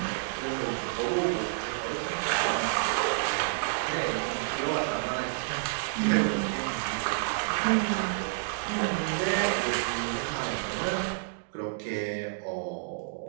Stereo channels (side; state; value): left; silent; digital silence